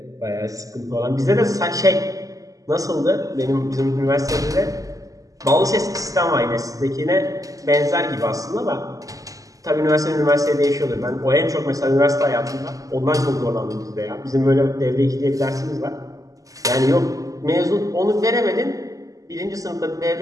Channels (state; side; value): late; left; 0.17 ms